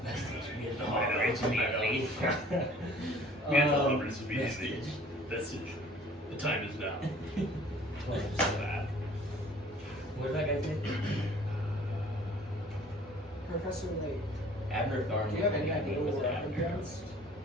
vestige. We had the I know. immediately. Vestige. Vestige. The time is now. Close. That. What did that guy say? Professor Layk. Abner Thorne. Do you have was any the idea name, what was we're it up Abner? against?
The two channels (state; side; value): normal; both; correlation 0.51